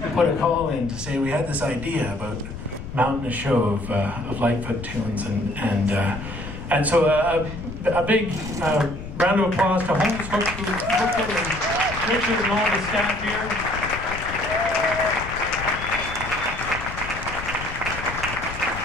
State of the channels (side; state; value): left; noise; rumble, 10 dB below the sound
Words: put a call in to say we had this idea about mounting a show of Lightfoot tunes, and so a big round of applause to Holmes Hook, who booked it, and Richard and all the staff here.